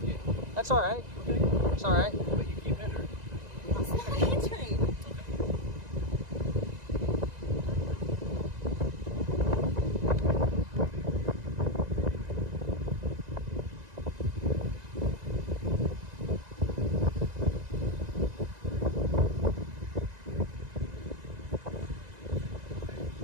That's all right. Okay. It's all right. But you keep hindering. It's not hindering.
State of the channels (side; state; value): left; late; 1.9 ms